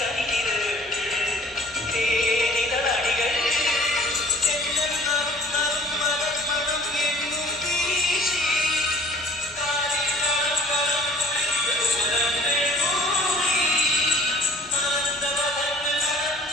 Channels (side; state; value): both; normal; correlation 0.52